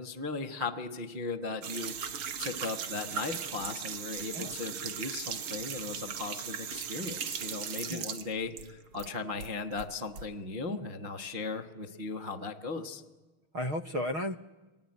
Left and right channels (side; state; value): left; late; 6.5 ms